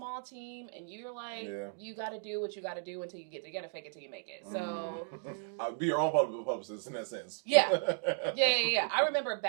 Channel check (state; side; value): silent; left; digital silence